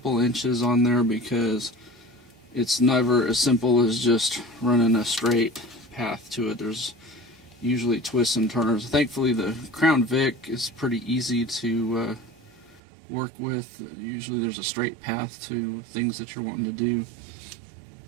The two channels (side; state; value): left; drops out; at 12.8 s